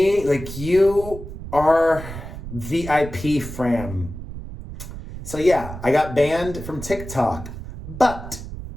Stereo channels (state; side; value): noise; right; rumble, 11 dB below the sound